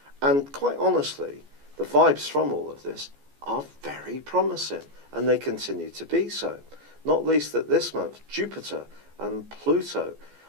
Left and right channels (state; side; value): late; left; 14 ms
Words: And quite honestly, the vibes from all of this are very promising, and they continue to be so. Not least that this month, Jupiter and Pluto